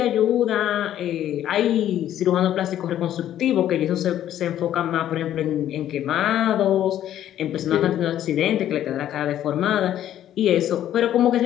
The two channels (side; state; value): right; quieter; 11.6 dB